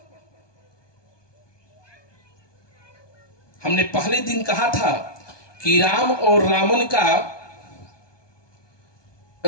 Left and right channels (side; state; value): right; late; 1.2 ms